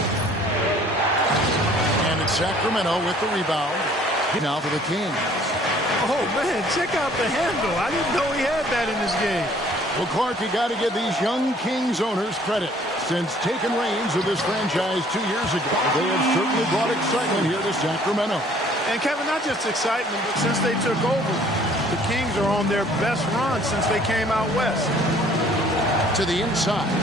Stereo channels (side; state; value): both; normal; correlation 0.57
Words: And it's Sacramento with the rebound. Now for the Kings. Oh, man, check out the handle. I didn't know he had that in this game. Well, Clark, you got to give these young Kings owners credit. Since taking reins of this franchise 2 years ago, they have certainly brought excitement here to Sacramento. And, Kevin, not just excitement, but since they took over, the Kings are on their best run since they came out west. To the inside.